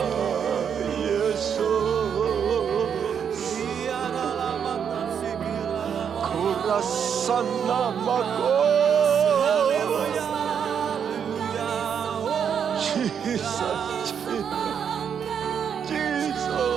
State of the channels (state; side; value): quieter; left; 7.7 dB